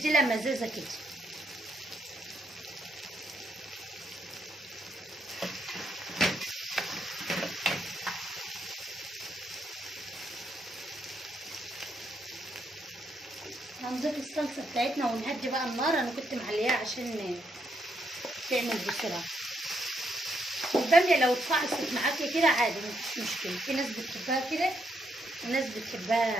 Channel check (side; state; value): both; normal; correlation 0.77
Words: مزازه كده. هنضيف الصلصه بتاعتنا ونهدي بقى النار. انا كنت معلياها عشان تعمل بسرعه. الباميه لو اتفعصت معاكي كده عادي مفيش مشكله، في ناس بتحبها كده وناس